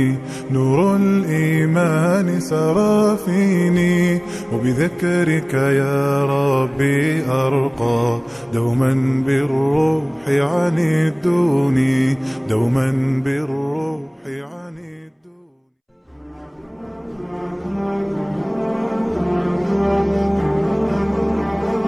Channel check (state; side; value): identical; both; correlation 1.00